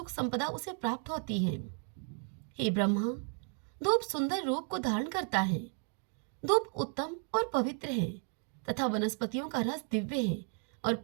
संपदा उसे प्राप्त होती है। हे ब्रह्मा, धूप सुंदर रूप को धारण करता है। धूप उत्तम और पवित्र है तथा वनस्पतियों का रस दिव्य है और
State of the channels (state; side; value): quieter; left; 40.0 dB